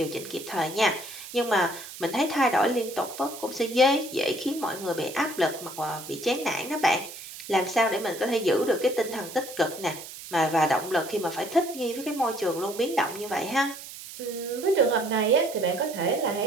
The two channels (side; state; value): right; noise; hiss, 13 dB below the sound